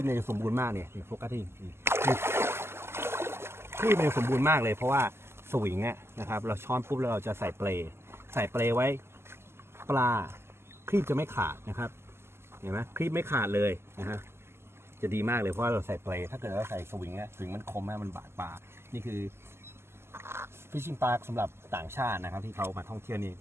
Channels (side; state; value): left; late; 0.12 ms